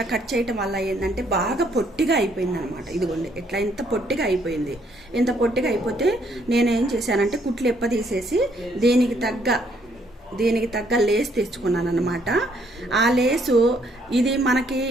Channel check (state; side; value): normal; both; correlation 0.68